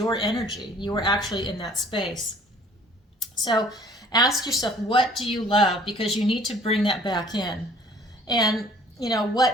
energy. You were actually in that space. So ask yourself, what do you love? Because you need to bring that back in. And, you know,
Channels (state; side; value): normal; both; correlation 0.54